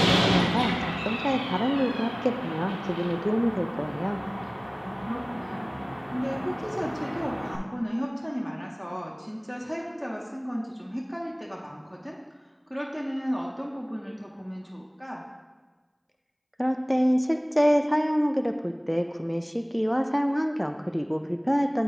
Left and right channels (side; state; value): both; identical; correlation 1.00